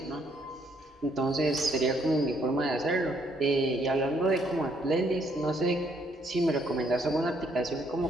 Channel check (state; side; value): normal; both; correlation 0.70